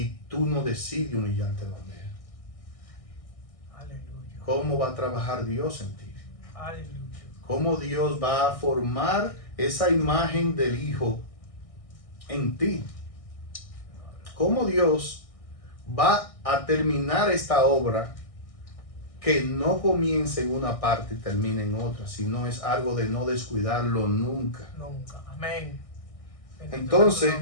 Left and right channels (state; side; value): late; right; 1.6 ms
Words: tú no decides humillarte donde Él? Aleluya. ¿Cómo va a trabajar Dios en ti? Aleluya. ¿Cómo Dios va a formar esa imagen del Hijo en ti? ¿Cómo Dios va a terminar esta obra que no comience en una parte y termine en otra, sino es algo de no descuidarlo nunca? Nunca. Amén. Bendito Entonces, sea su